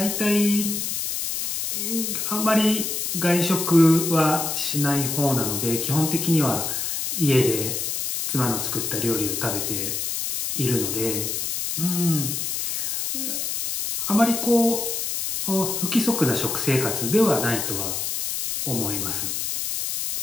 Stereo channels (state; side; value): noise; left; hiss, 2 dB below the sound